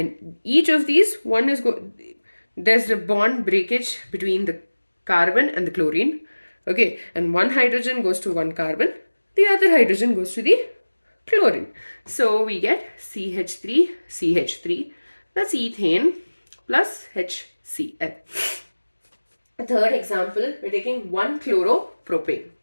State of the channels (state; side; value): inverted; both; correlation -1.00